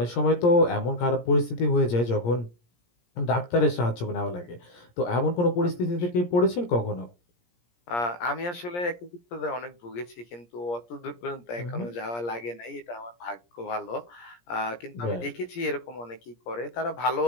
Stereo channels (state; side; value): late; right; 17 ms